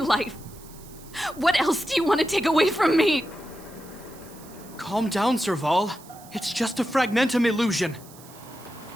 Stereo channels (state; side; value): noise; right; hiss, 21 dB below the sound